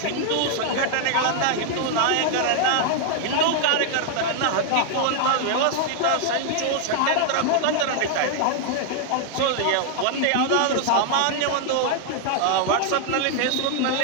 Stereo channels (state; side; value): different; both; correlation 0.00